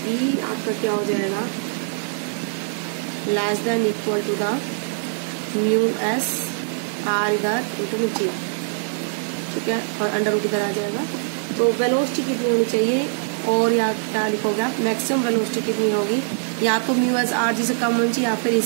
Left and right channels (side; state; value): left; silent; 56 dB below the other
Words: आपका क्या हो जाएगा, less than equal to the mu S R इधर इंटू में जी। ठीक है, और अंडर रूट इधर आ जाएगा। तो वेलोसिटी कितनी होनी चाहिए, और यहाँ क्या लिखोगे आप, मैक्सिमम वेलोसिटी कितनी होगी, या तो म्यू एस आर जी से कम होनी चाहिए या फिर